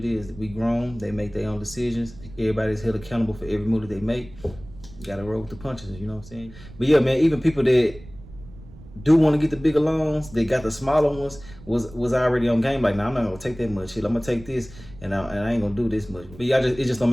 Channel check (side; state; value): right; noise; rumble, 18 dB below the sound